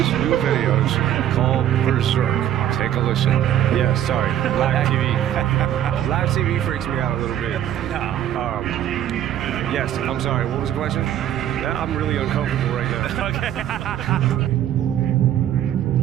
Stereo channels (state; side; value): quieter; left; 11.2 dB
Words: videos called Berserk. Take a listen. Yeah, sorry. Live TV. Live TV freaks me out a little bit. Yes, I'm sorry. What was the question? Yeah, I'm really uncomfortable right now. Okay.